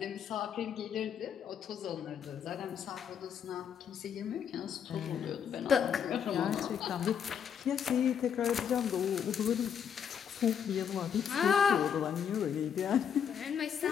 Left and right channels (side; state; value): right; quieter; 7.9 dB